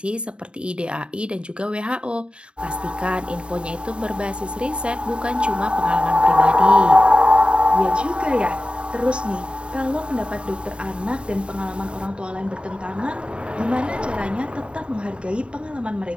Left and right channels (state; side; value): late; left; 0.054 ms